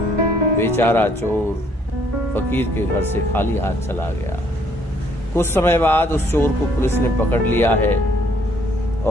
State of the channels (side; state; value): both; normal; correlation 0.65